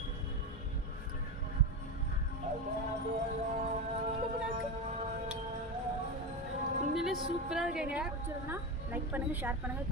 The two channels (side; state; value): both; normal; correlation 0.17